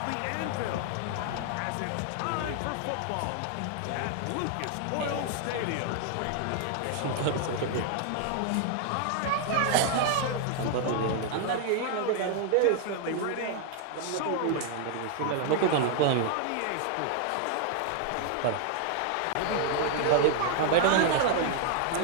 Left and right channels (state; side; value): different; both; correlation 0.00